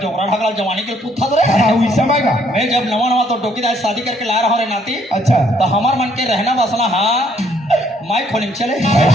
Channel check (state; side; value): normal; both; correlation 0.66